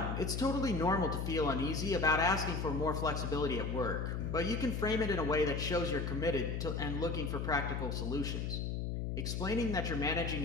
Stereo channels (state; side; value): noise; left; hum, 2 dB below the sound